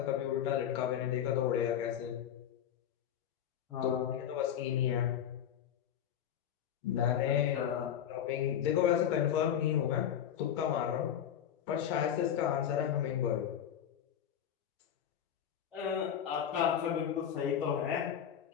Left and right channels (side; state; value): right; quieter; 9.5 dB